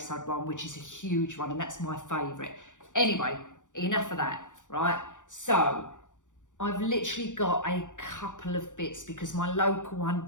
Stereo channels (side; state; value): right; late; 0.86 ms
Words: one, which is a huge one, and that's my favourite. Anyway, enough of that, right? So I've literally got a couple of bits because my local one